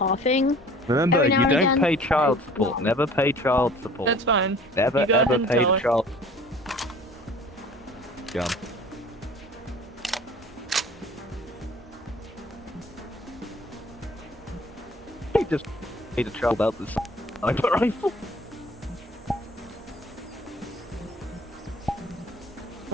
Remember, every you now and don't again. pay child support. No. Never pay child support. That's fine. Never You go ever ahead and pay tell the her. child. Gun. He just made a child out this sniper rifle.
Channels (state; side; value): normal; both; correlation 0.48